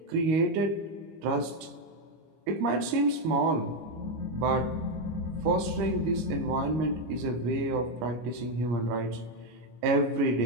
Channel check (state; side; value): late; left; 25 ms